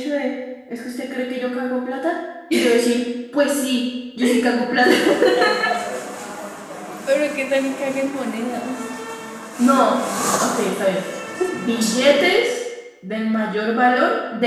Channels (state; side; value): identical; both; correlation 1.00